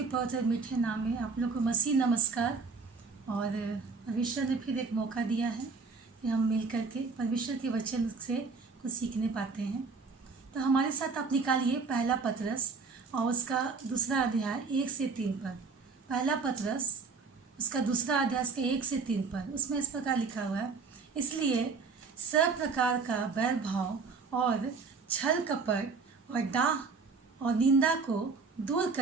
पवित्र मीठे नाम में आप लोग को मसीह नमस्कार। और परमेश्वर ने फिर एक मौका दिया है कि हम मिल कर के परमेश्वर के वचन से कुछ सीखने पाते हैं। तो हमारे साथ आप निकालिए पहला पतरस और उसका दूसरा अध्याय 1 से 3 पर। पहला पतरस उसका दूसरा अध्याय उसका 1 से 3 पर। उसमें इस प्रकार लिखा हुआ है, इसलिए सब प्रकार का बैर भाव और छल कपट और डाह और निंदा को दूर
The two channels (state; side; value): quieter; left; 4.6 dB